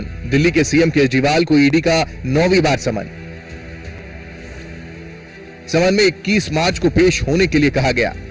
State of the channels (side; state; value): both; identical; correlation 1.00